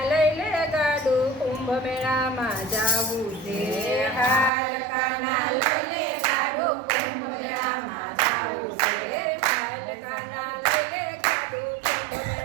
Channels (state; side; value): drops out; left; at 4.5 s